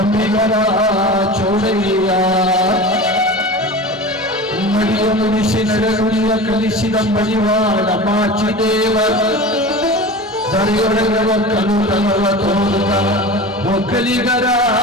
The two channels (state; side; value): normal; both; correlation 0.33